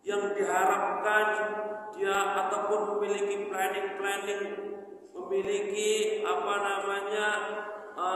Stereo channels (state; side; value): identical; both; correlation 1.00